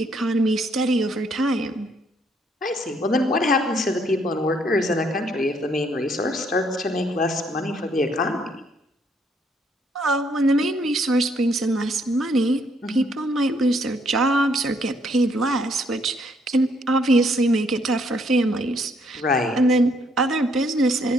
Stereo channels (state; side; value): normal; both; correlation 0.69